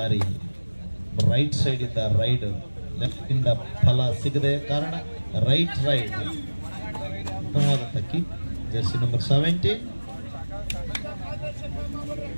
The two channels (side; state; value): both; inverted; correlation -1.00